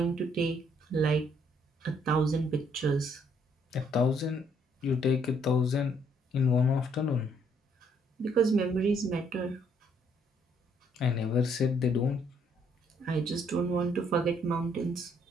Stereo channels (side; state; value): both; normal; correlation 0.68